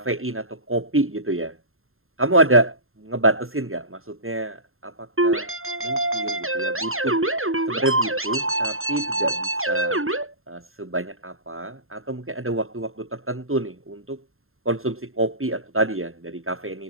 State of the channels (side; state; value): left; late; 0.61 ms